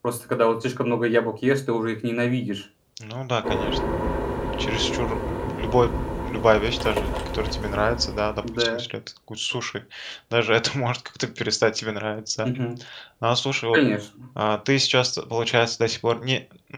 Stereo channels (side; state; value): both; identical; correlation 1.00